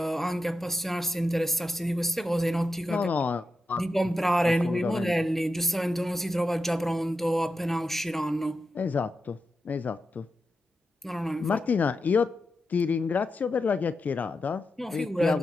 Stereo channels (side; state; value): both; normal; correlation 0.89